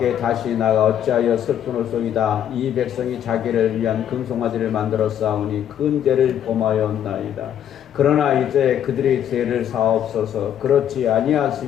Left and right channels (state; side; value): quieter; right; 10.0 dB